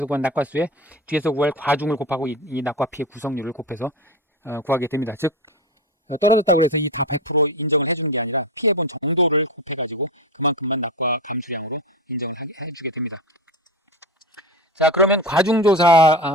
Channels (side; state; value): both; normal; correlation 0.22